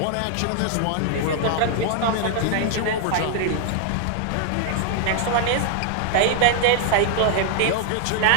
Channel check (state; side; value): different; both; correlation 0.00